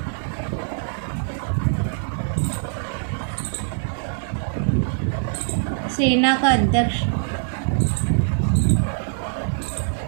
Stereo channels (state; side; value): silent; left; 63 dB below the other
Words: सेना का अध्यक्ष,